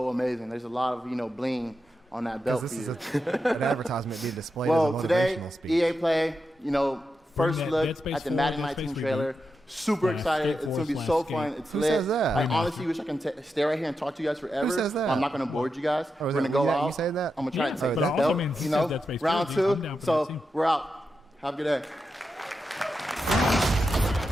amazing. There's a lot of, bling on that belt This for is you. an advertisement being displayed Well, as a today, motivational speech. EA Play, first that look Dead Space at the 4, Madden Dead Space 19 reboot. trailer. Super excited. It's going to be so fun. It's Who lit. says that? I honestly wish I can stay right here and talk to you guys forever. Who says that? I'm not going to board you guys. Oh, We're is going to it- go yeah, out. you say that? I'm going to try Yeah, to take but that it also belt, means he said Dead Space 4, round I'm 2. down for that too. So we're out. Have a good day.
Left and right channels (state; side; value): normal; both; correlation 0.88